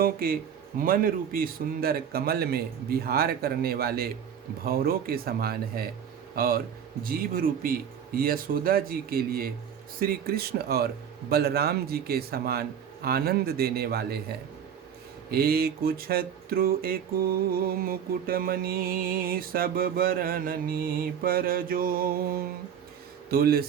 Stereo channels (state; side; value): quieter; left; 8.2 dB